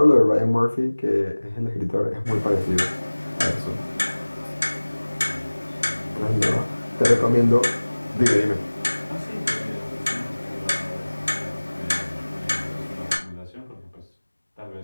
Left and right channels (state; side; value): inverted; both; correlation -1.00